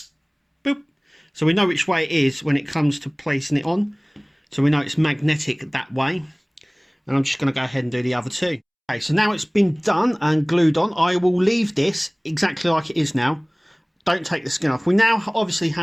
Boop. So we know which way it is when it comes to placing it on. So we know it's magnetic that way. And I'm just going to go ahead and do the other two. Okay, so now it's been done and glued on. I will leave this exactly like it is now. Don't take the skin off. We now obviously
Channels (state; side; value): identical; both; correlation 1.00